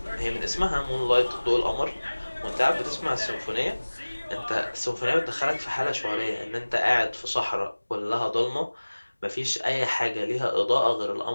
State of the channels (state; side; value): inverted; both; correlation -1.00